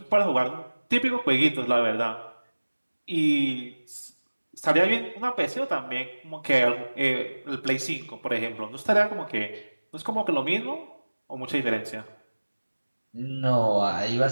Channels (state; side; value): inverted; both; correlation -1.00